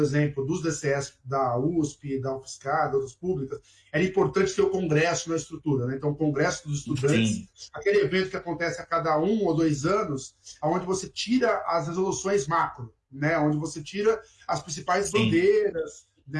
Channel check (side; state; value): both; identical; correlation 1.00